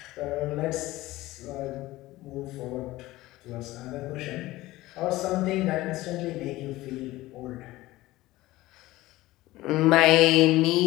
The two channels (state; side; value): quieter; right; 17.8 dB